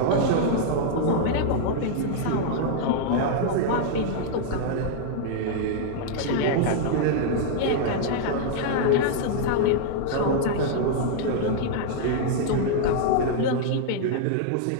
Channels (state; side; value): different; both; correlation -0.01